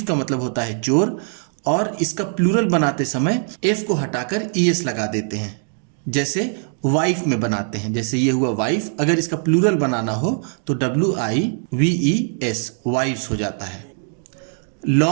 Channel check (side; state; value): left; silent; 58 dB below the other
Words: का मतलब होता है चोर, और इसका प्लूरल बनाते समय F को हटाकर ES लगा देते हैं, जैसे वाइफ में बनाते हैं। जैसे ये हुआ वाइफ, अगर इसका प्लूरल बनाना हो तो WIVES, वाइफ्स हो जाता है।